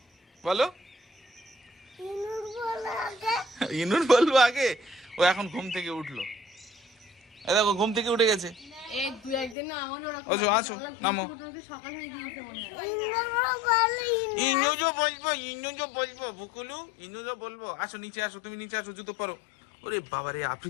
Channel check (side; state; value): right; drops out; at 9.6 s